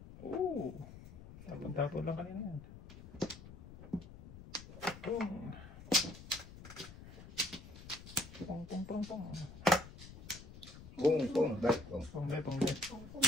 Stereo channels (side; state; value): left; noise; rumble, 15 dB below the sound